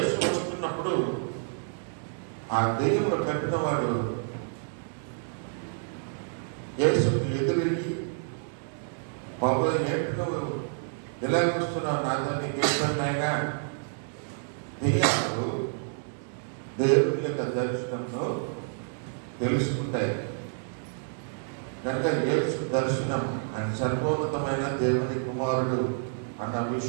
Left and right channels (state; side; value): silent; left; digital silence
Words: వస్తున్నప్పుడు ఆ దెయ్యములు కట్టిన వాడు యేసుకు ఎదురిగి, బాబు ఏంటి నువ్వు ఇలా వస్తున్నావు, నాతో నీకు ఇష్టమైనా? దెయ్యాలు దేవుని యొక్క దర్శనంలో తెలుసుకుంటాయి. కనుక యేసు దర్శనం ఆయన సర్వోన్నతమైన దేవుని కుమారుడు అన్న